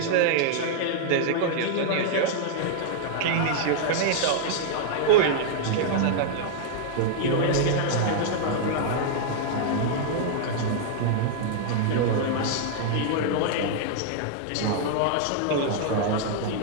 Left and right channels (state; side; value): different; both; correlation -0.01